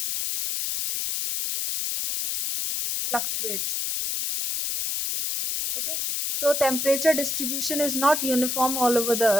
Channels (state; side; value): noise; left; hiss, 1 dB below the sound